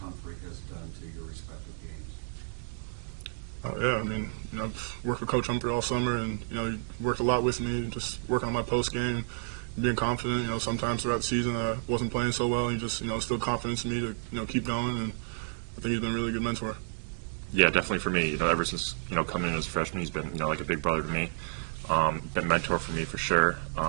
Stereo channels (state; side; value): silent; left; digital silence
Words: has done to your respective games? Oh, yeah. Coach Humphrey all summer, and you know, he worked a lot with me, just working on my post game, being confident. You know, sometimes throughout the season I wasn't playing so well, and he just instilled confidence in me to keep going, and I think he's been a really good mentor. Yeah, definitely for me. Ever since coming in as a freshman, he's been like a big brother to me. Been a mentor for me for sure.